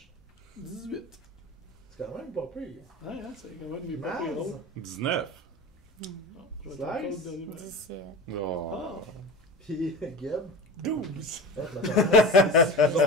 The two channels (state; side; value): normal; both; correlation 0.30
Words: 18. C'est quand même pas pire. Ouais, hein, c'est quand même mes Maz, papiers drôles. 19. Non, je vais être Slice. encore le dernier match. 17. Oh. Ah! puis Geb. 12!